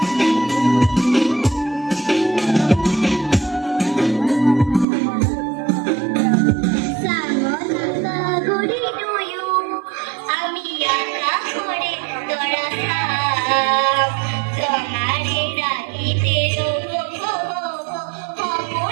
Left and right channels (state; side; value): drops out; left; at 4.9 s